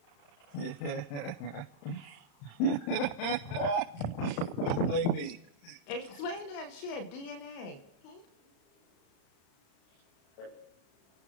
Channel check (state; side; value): late; right; 35 ms